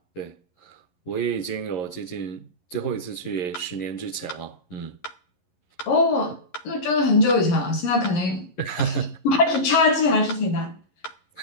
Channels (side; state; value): right; late; 11 ms